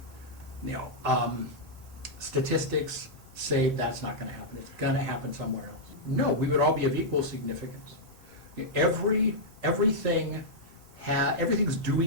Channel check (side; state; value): both; normal; correlation -0.08